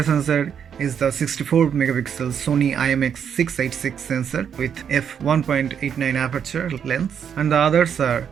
sensor is the 64-megapixel Sony IMX686 sensor with f1.89 aperture lens, and the others are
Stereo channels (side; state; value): left; quieter; 7.9 dB